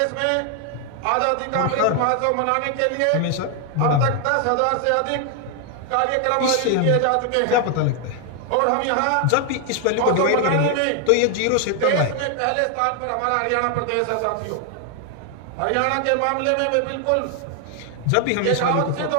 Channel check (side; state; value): both; different; correlation 0.00